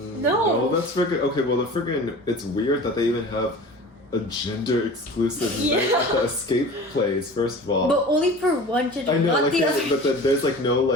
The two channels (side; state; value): both; normal; correlation 0.39